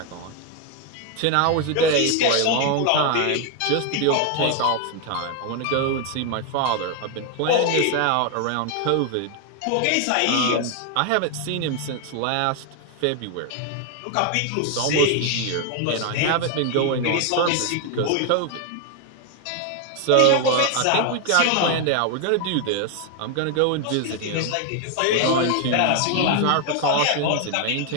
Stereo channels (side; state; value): both; different; correlation 0.01